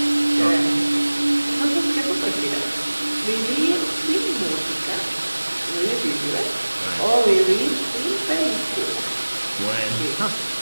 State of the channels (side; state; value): both; inverted; correlation -1.00